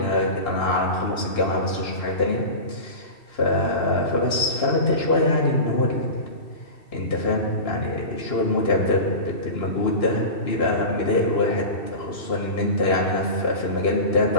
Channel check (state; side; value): late; right; 2.7 ms